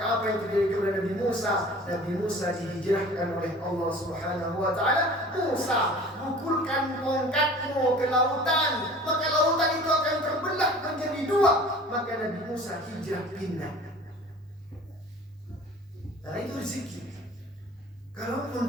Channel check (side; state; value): both; normal; correlation 0.44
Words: apa yang terjadi kepada Nabi Musa? Nabi Musa dihijrahkan oleh Allah Subhanahu wa Ta'ala. Musa, pukulkan tongkatmu ke lautan, maka lautan itu akan terbelah menjadi dua. Maka Nabi Musa hijrah pindah. Nah, itu rezeki. Kalaupun